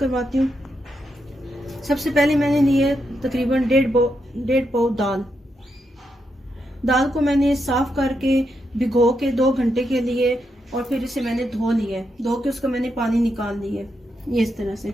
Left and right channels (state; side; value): normal; both; correlation 0.83